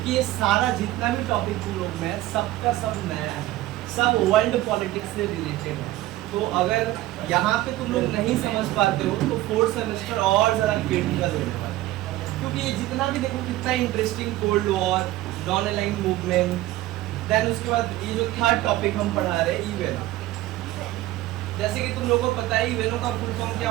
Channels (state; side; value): quieter; left; 16.3 dB